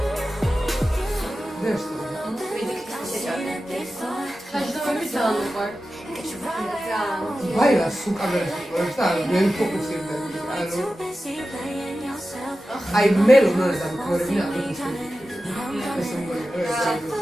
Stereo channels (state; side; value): normal; both; correlation 0.93